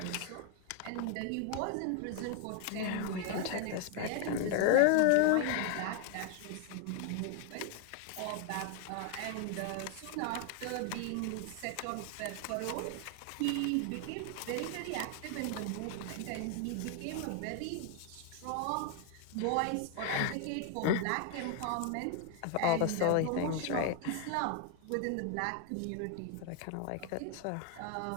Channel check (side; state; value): both; different; correlation 0.01